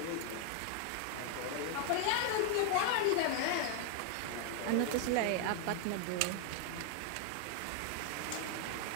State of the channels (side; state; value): both; different; correlation 0.00